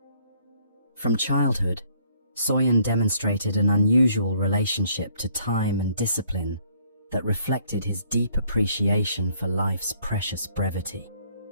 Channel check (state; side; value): inverted; both; correlation -0.63